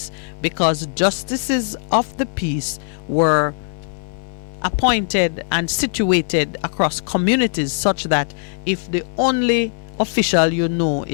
because justices of the peace were appointed and situated across communities such that if the only official you know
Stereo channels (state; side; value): silent; right; 66 dB below the other